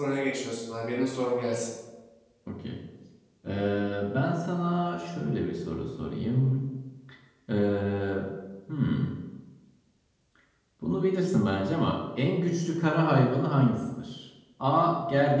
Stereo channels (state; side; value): identical; both; correlation 1.00